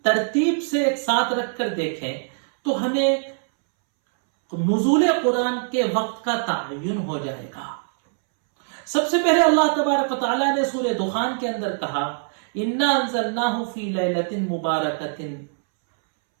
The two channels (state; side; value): silent; left; 64 dB below the other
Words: ترتیب سے ایک ساتھ رکھ کر دیکھیں تو ہمیں نزول قرآن کے وقت کا تعین ہو جائے گا۔ سب سے پہلے اللہ تبارک و تعالیٰ نے سورہ دخان کے اندر کہا انا انزلناہ فی لیلۃ مبارکۃ،